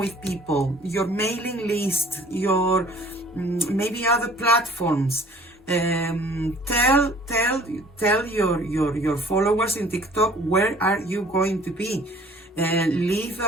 people. Your mailing list, your maybe other platforms. Tell your followers in TikTok where are you going to be. Leave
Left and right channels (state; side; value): normal; both; correlation 0.53